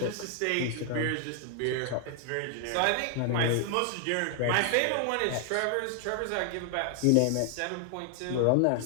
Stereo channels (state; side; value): different; both; correlation 0.00